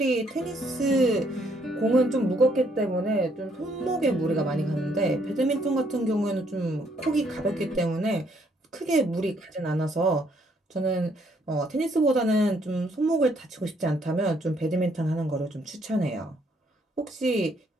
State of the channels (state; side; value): normal; both; correlation 0.69